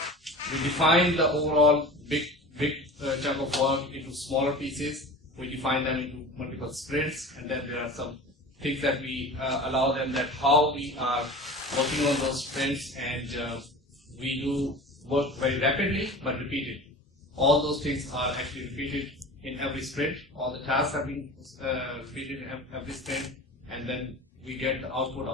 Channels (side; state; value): both; normal; correlation 0.36